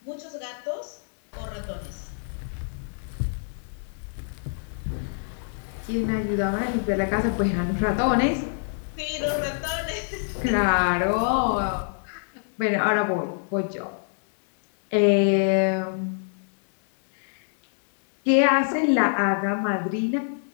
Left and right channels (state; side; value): silent; right; digital silence